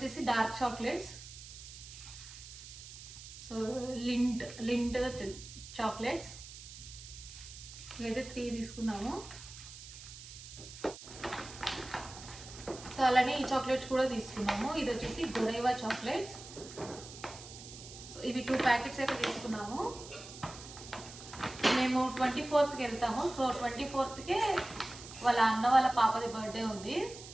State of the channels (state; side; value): noise; right; hiss, 14 dB below the sound